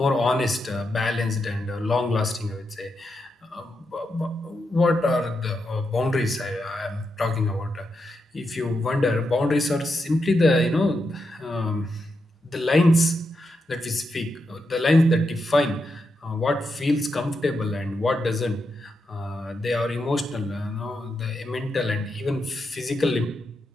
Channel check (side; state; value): both; normal; correlation 0.85